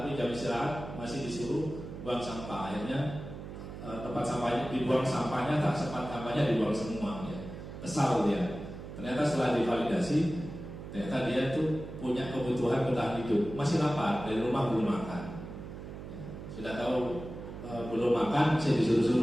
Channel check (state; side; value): noise; right; hum, 10 dB below the sound